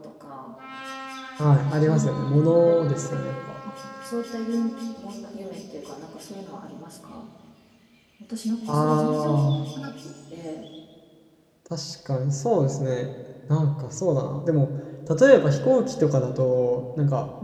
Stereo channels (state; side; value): identical; both; correlation 1.00